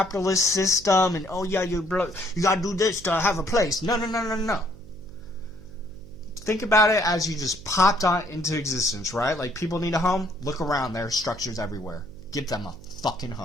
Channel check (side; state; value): right; noise; hum, 19 dB below the sound